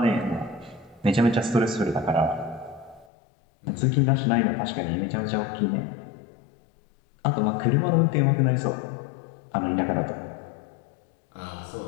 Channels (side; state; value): right; drops out; at 3.1 s